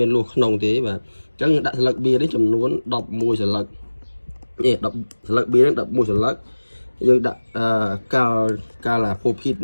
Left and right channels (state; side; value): inverted; both; correlation -1.00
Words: មានលុះក្នុងទេបាទអញ្ចឹងដាក់ស្លឹកបៀនេះចំនួន11ស្លឹកនេះ10ស្លឹកបៀនេះ11ស្លឹកយើងដាក់កាឡាផូភីត